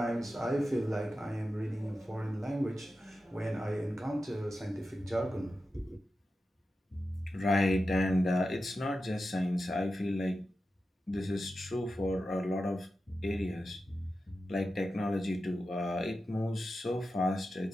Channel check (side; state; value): both; normal; correlation 0.91